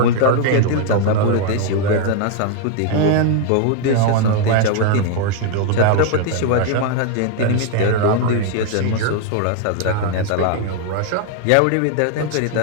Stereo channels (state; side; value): different; both; correlation 0.00